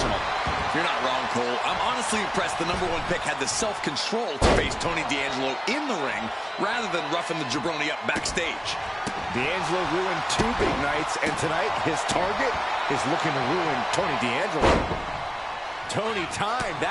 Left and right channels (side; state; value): both; identical; correlation 1.00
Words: You're not wrong, Cole. I'm honestly impressed the #1 pick had the self-control to face Tony D'Angelo in the ring rather than roughing the jabroni up backstage. D'Angelo ruined 2 big nights, and tonight his target is looking to ruin Tony D'Angelo. Tony timed